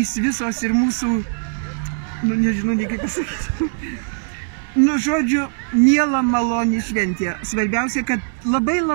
visos ir mūsų, nežinau, nei kaip pasakyti. Žodžiu, miela maloni šventė. Svarbiausia, kad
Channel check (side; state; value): left; silent; digital silence